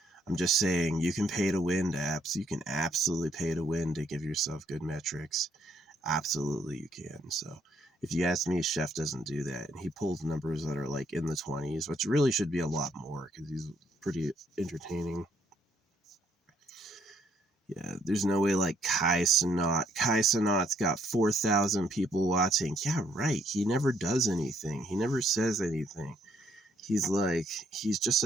I'm just saying you can pay to win apps. You can absolutely pay to win to give yourself good metrics. Absolutely, you can. So if you ask me, Chef doesn't do that. And he pulls numbers that are like in the 20s, which really should be a lot more because he's pretty entertaining. Yeah, there's no way like Kai Cenat. Kai Cenat's got 4,000 people watching. Yeah, right. He never does anything. He never says anything. He's just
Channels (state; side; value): normal; both; correlation 0.69